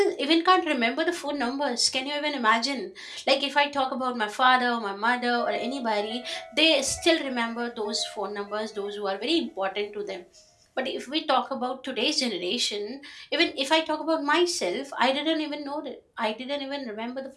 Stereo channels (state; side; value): identical; both; correlation 1.00